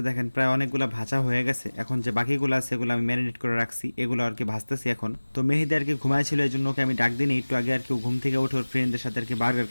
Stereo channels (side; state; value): both; inverted; correlation -1.00